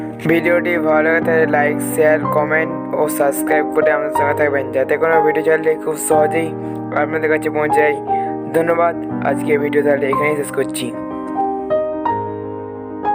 ভিডিওটি ভালো লাগে তাহলে লাইক, শেয়ার, কমেন্ট ও সাবস্ক্রাইব করে আমাদের সঙ্গে থাকবেন, যাতে কোনো ভিডিও চাইলে খুব সহজেই আপনাদের কাছে পৌঁছে যায়। ধন্যবাদ। আজকে ভিডিও তাহলে এখানেই শেষ করছি।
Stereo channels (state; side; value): identical; both; correlation 1.00